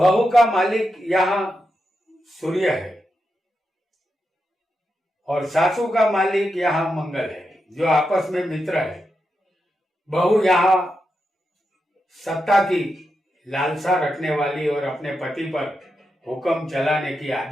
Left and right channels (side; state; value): both; normal; correlation 0.87